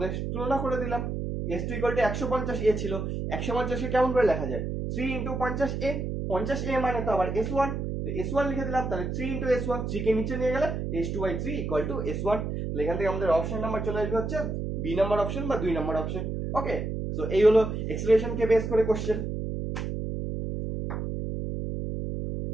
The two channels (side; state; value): right; noise; hum, 3 dB below the sound